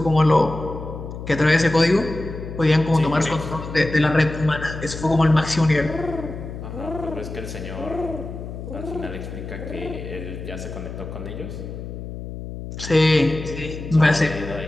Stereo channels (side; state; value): left; noise; hum, 9 dB below the sound